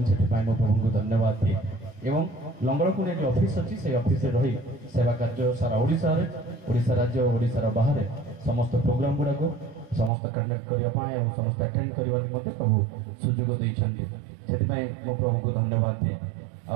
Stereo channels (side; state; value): left; drops out; at 10.1 s